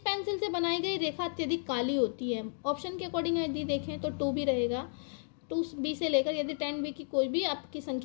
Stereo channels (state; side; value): silent; right; 56 dB below the other